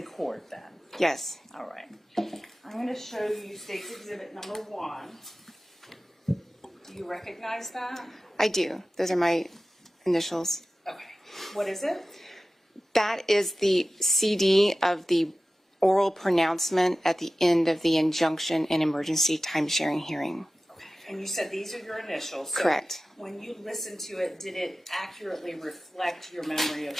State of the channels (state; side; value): normal; both; correlation 0.95